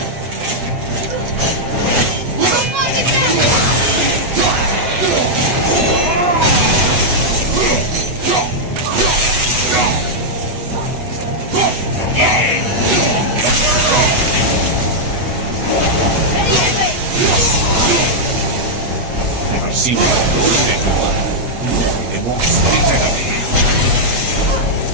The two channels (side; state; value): left; late; 8.2 ms